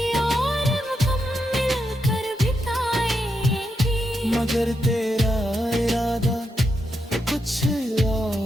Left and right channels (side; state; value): both; normal; correlation 0.84